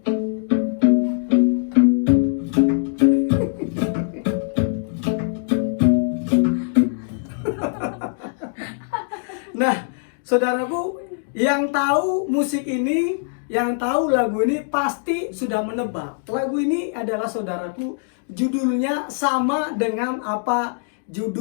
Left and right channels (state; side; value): silent; right; digital silence